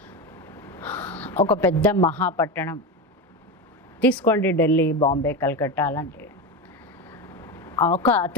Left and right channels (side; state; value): both; normal; correlation 0.18